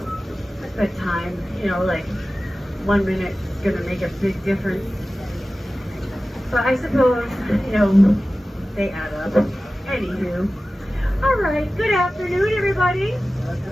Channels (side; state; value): both; normal; correlation 0.96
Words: a good time. You know, like 1 minute is gonna make a big difference. But I suppose, you know, they add up. Anywho. All right, good afternoon, everybody.